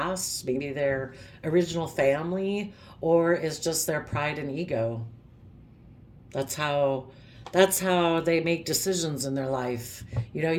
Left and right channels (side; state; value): both; identical; correlation 1.00